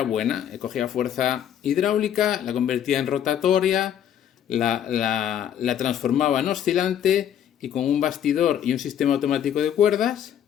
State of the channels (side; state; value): right; quieter; 9.8 dB